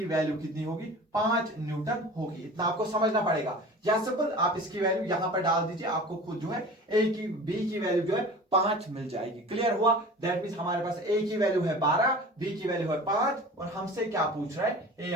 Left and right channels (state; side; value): normal; both; correlation 0.39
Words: वैल्यू कितनी होगी, 5 न्यूटन होगी। इतना आपको समझना पड़ेगा। या सिंपल आप इसकी वैल्यू यहां पर डाल दीजिए, आपको खुद जो है बी की वैल्यू जो है 5 मिल जाएगी। क्लियर हुआ? दैट मीन हमारे पास ए की वैल्यू है 12, बी की वैल्यू है 5 और हमसे क्या पूछ रहा है, ए